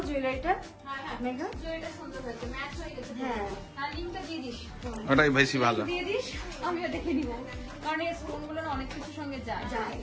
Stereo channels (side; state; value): both; identical; correlation 1.00